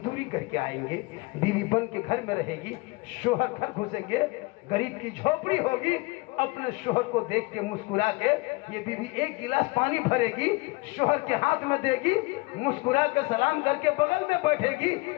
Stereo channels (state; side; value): quieter; right; 25.3 dB